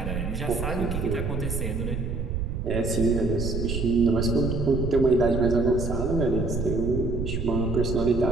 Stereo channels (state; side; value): noise; right; rumble, 3 dB below the sound